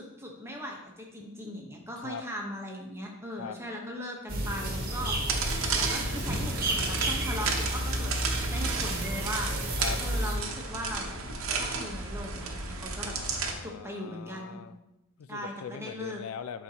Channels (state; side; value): normal; both; correlation 0.36